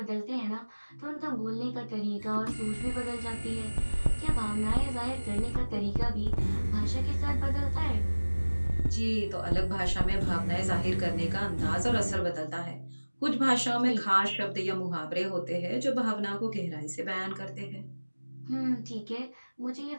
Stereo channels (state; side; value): inverted; both; correlation -1.00